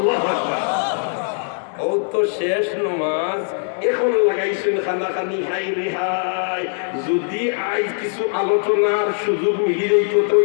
আকবার ও তো শেষ নামাজ এখন লাগাইছেন খানাখানি হাই রেহাই যদি আজ কিছু আলোচনার সুযোগ মিলি যাইতো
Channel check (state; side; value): silent; right; 65 dB below the other